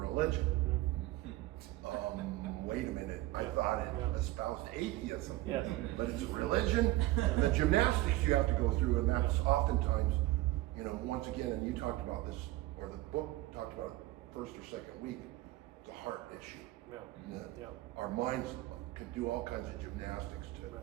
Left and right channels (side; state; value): left; quieter; 17.4 dB